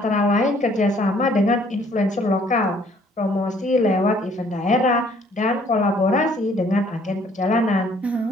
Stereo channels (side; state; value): both; normal; correlation 0.61